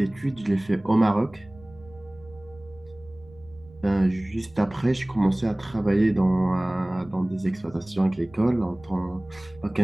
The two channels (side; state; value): right; noise; rumble, 24 dB below the sound